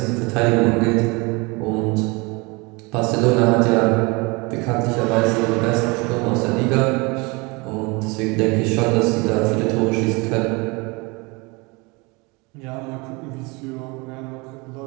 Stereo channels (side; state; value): left; quieter; 27.0 dB